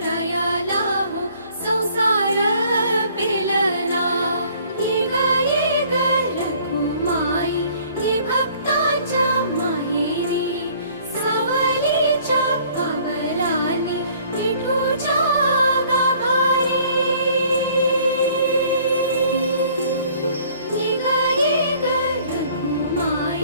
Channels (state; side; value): inverted; both; correlation -0.56